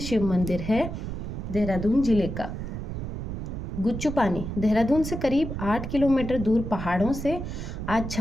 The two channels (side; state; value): right; noise; rumble, 6 dB below the sound